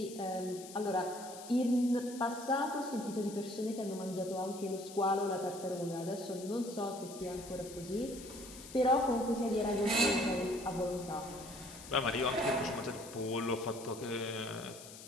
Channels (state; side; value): noise; left; hiss, 15 dB below the sound